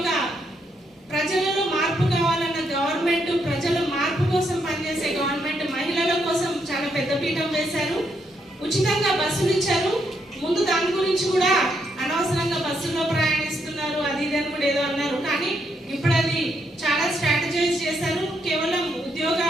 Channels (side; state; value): both; normal; correlation 0.77